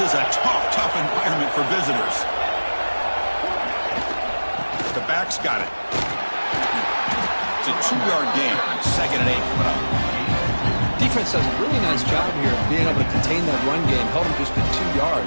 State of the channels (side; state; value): both; inverted; correlation -1.00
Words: a tough environment for visitors. The back's got it. It's a 2-yard gain. 2nd and 8 coming up. Defense does a really nice job here of being able to contain that run game. Held him just to 2